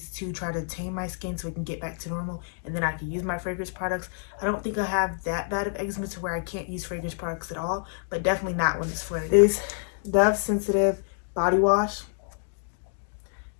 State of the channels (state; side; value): silent; right; 60 dB below the other